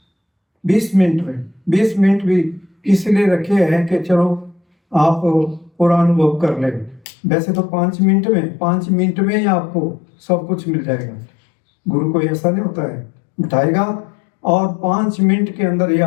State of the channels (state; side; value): drops out; right; at 7.0 s